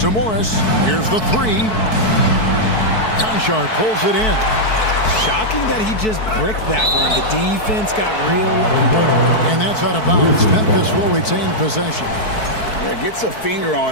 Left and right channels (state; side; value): late; right; 4.6 ms